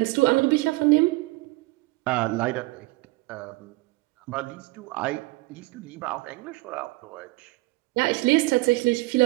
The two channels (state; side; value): quieter; left; 22.8 dB